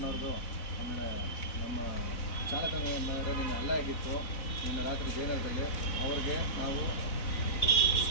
ಆಮೇಲೆ ನಮ್ಮ ಚಾಲಕನ ಮೇಲೆ ನಿನ್ನೆ ಹಲ್ಲೆ ಆಗಿತ್ತು. ನಿನ್ನೆ ರಾತ್ರಿ ಜಯನಗರದಲ್ಲಿ ಅವ್ರಿಗೆ ನಾವು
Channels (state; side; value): late; right; 4.0 ms